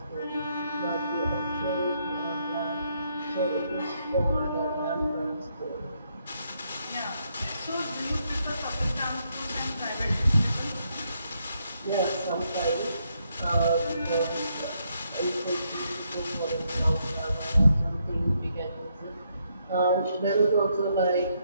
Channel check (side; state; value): both; inverted; correlation -0.76